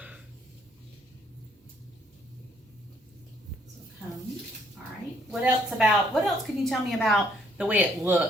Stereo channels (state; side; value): normal; both; correlation 0.67